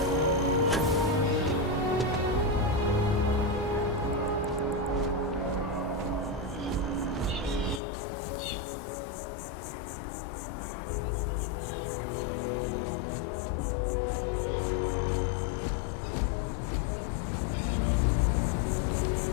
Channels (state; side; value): drops out; right; at 7.8 s